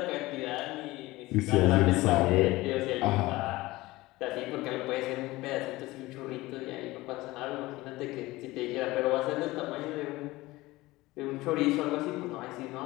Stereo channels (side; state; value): right; quieter; 19.5 dB